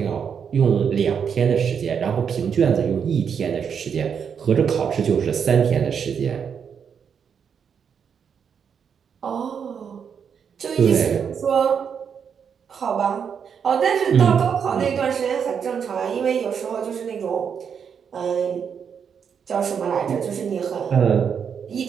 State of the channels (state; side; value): quieter; left; 7.2 dB